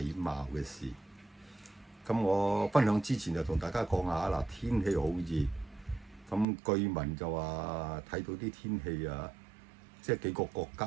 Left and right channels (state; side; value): drops out; left; at 6.5 s